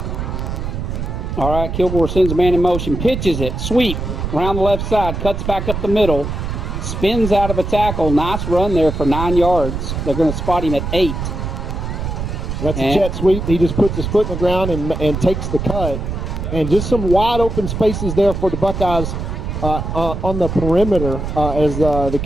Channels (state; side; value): noise; right; rumble, 4 dB below the sound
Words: All right, Kilgore sends a man in motion, pitches it, sweep around the left side, cuts back up the middle, spins out of a tackle. Nice run there for 9 yards. They're going to spot him at 8. That's a jet sweep. He just puts his foot in the ground and takes the cut. And just some wide open spaces there for the Buckeyes on the perimeter as the